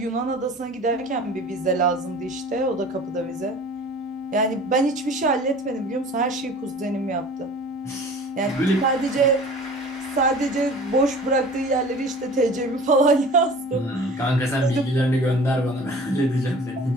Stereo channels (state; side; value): normal; both; correlation 0.43